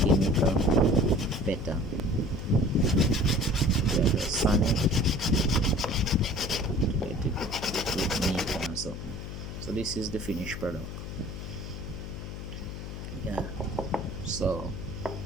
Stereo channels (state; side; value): noise; left; hum, 8 dB below the sound